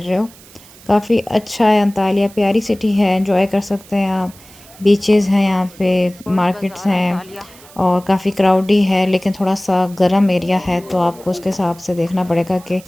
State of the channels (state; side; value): noise; right; hiss, 23 dB below the sound